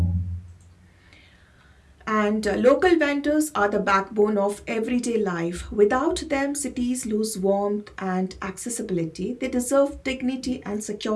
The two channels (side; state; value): both; identical; correlation 1.00